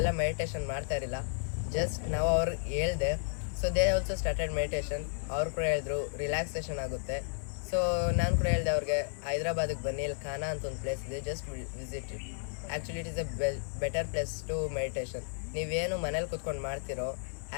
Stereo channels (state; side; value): silent; right; 56 dB below the other